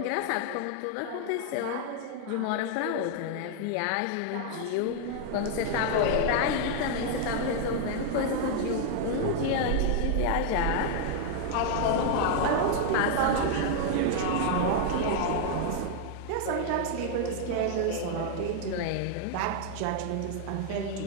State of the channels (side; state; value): both; different; correlation 0.00